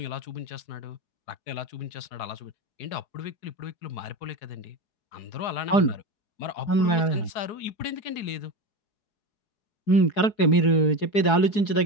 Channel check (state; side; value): late; right; 4.7 ms